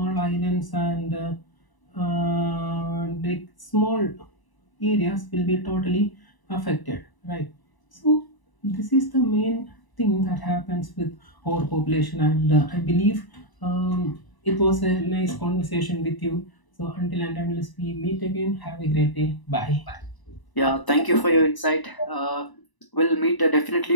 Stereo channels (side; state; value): right; late; 1.0 ms